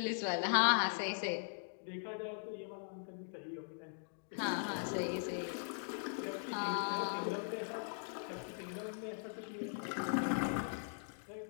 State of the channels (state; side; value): silent; right; digital silence